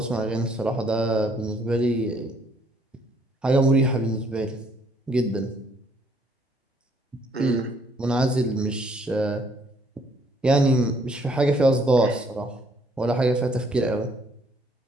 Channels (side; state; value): both; normal; correlation 0.65